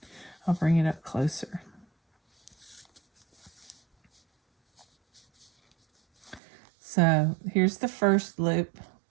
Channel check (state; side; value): drops out; left; at 6.4 s